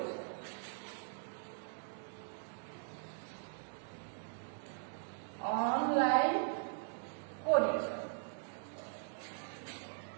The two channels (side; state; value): left; silent; digital silence